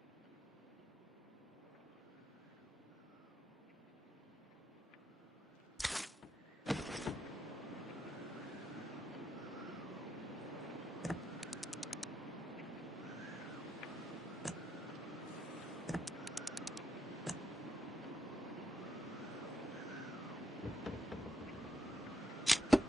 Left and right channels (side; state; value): both; normal; correlation 0.80